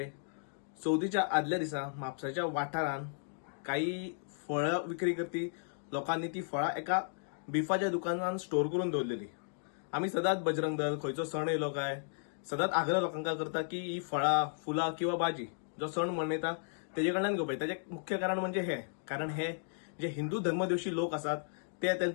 चवथीच्या आदल्या दिसा म्हापसाच्या वाठारान काही फळं विक्री करपी लोकांनी ती फळां एका बिफाच्या दुकानात स्टोर करून दवरलेली. आम्ही सदांच बजरंग दल खंयचो सण येयलो काय सदांच आग्रह लोकांका करता की ही फळां, फुलां किंवा भाजी जो सण मनयता तेजे कडल्यान घेवपाची. ताचे मुख्य कारण म्हणजे हे कारण हे जे हिंदू धर्मद्वेषी लोक असतात ते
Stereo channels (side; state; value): right; silent; digital silence